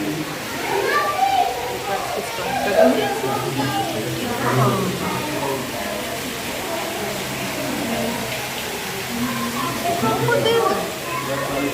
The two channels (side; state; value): both; identical; correlation 1.00